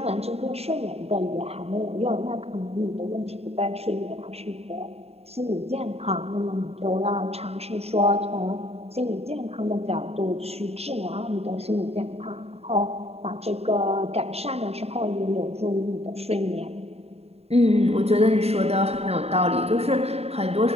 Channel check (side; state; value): left; late; 0.30 ms